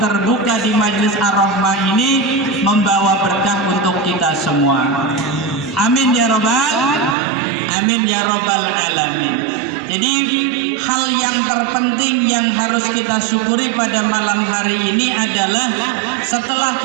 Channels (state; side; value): drops out; left; at 7.2 s